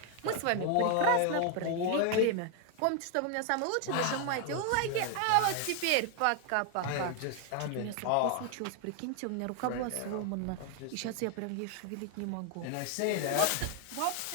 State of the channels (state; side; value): different; both; correlation 0.00